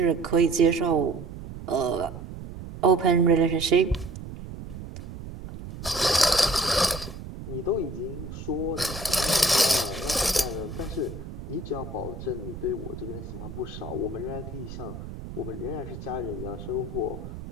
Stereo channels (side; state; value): right; noise; rumble, 11 dB below the sound